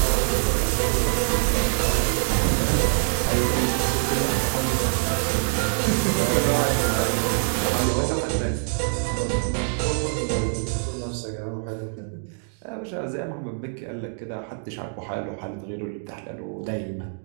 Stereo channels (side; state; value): left; silent; 62 dB below the other